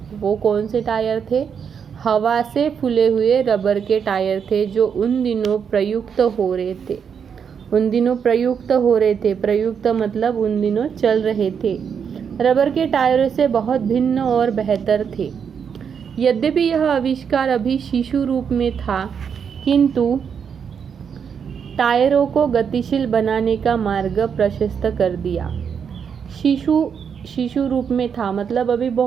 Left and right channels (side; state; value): left; quieter; 7.1 dB